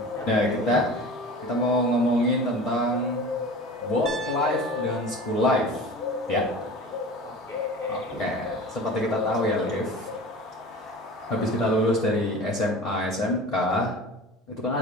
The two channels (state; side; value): normal; both; correlation 0.37